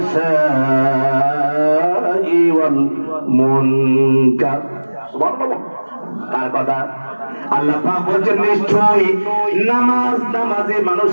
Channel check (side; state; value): both; inverted; correlation -1.00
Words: ওয়াল মুনকার। সুবহানাল্লাহ। তার কথা আল্লাহ পাক বলেন নিশ্চয়ই নামাজে